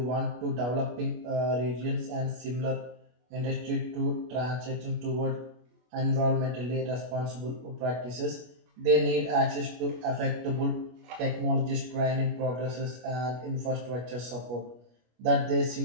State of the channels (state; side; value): late; left; 25 ms